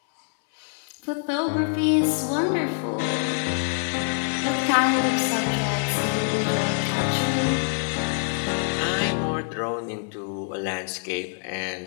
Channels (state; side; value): silent; right; 61 dB below the other